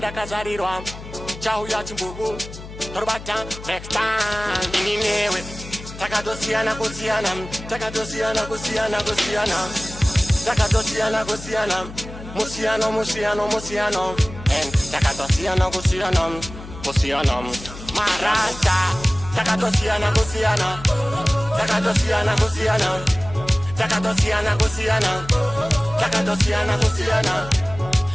kazarirwa Chau ya chimbugu Torbata next time Ininewe Takadosiana kusiana Takadosiana kusiana kusiana Takadosiana kusiana Musiano musiano musiano And takadosiana kusiana Kusiana Marasta Takadosiana kusiana Takadosiana kusiana Takadosiana kusiana Takadosiana kusiana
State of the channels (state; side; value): noise; left; hum, 13 dB below the sound